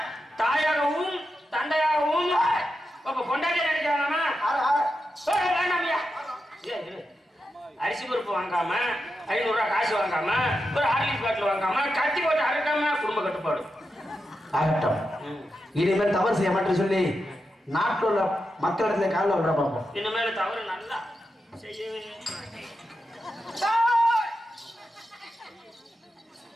தாயாகவும் தந்தையாகவும் கொண்டாடிய நினைக்கிறானா? வேண்டாம்யா. அரிசி பருப்பு வாங்காம 500 ரூபாய் காசு வாங்காம ஒரு ஹார்லிக்ஸ் பாட்டில் வாங்காம கத்தி போட்டு அறுக்காம குடும்ப கட்டுப்பாடு ஆகட்டும். இனிமேல் தவறு செய்ய மாட்டேன்னு சொல்லி நாட்டில் உள்ள மக்களிடத்துல காலில் விட பார்ப்போம். இனிமேல் தவறு நல்லா செய்யவே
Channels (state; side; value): normal; both; correlation 0.88